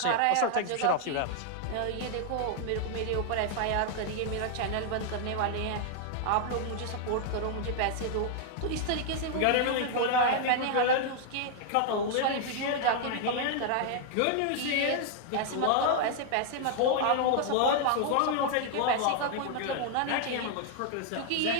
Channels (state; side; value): different; both; correlation 0.00